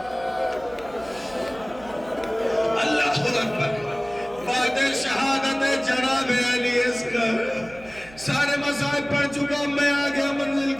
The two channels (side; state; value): right; noise; hum, 20 dB below the sound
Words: اللہ اکبر۔ بعد شہادت جناب علی اصغر، سارے مسائل پڑھ چکا، میں آ گیا منزل